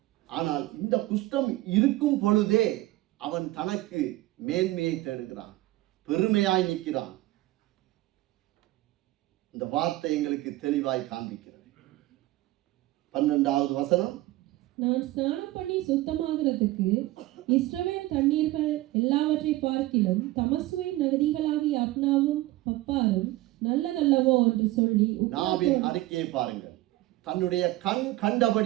ஆனால் இந்த குஷ்டம் இருக்கும் பொழுதே அவன் தனக்கு மேன்மையை தேடுகிறான், பெருமையாய் நிற்கிறான். இந்த வார்த்தை எங்களுக்கு தெளிவாய் காண்பிக்கிறது. 12வது வசனம், நான் ஸ்நானம் பண்ணி சுத்தமாகிறதுக்கு இஸ்ரவேல் தண்ணீர்கள் எல்லாவற்றை பார்க்கிலும் தமசுவின் நதிகளாகிய அப்னாவும் பப்பாரும் நல்லதல்லவோ என்று சொல்லி நாவின் அறிக்கையை பாருங்கள். தன்னுடைய கண்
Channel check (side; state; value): left; quieter; 17.7 dB